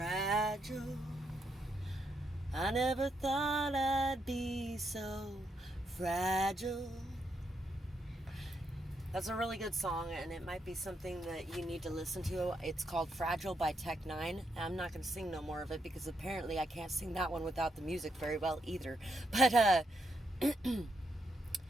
I never thought I'd be so fragile. That's a really good song, and it might be something that you need to listen to. It's called Fragile by Tech Nine. I'm not going to sing no more of it because apparently I can't sing that one without the music very well either. But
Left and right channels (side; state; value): both; normal; correlation 0.79